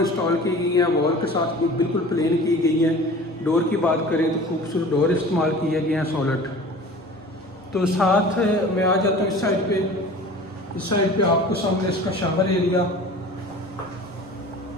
की गई हैं। वॉल के साथ बिल्कुल प्लेन की गई हैं। डोर की बात करें तो खूबसूरत डोर इस्तेमाल किए गए हैं सॉलिड। तो साथ मैं आ जाता हूँ इस साइड पे। इस साइड पे आपको सामने इसका शावर एरिया,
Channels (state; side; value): normal; both; correlation 0.41